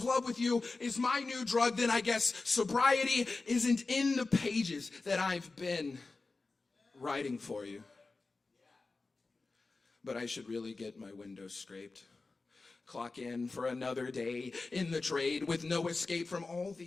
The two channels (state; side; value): quieter; right; 3.7 dB